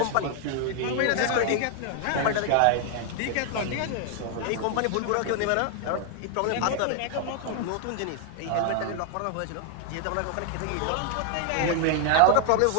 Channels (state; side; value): different; both; correlation 0.00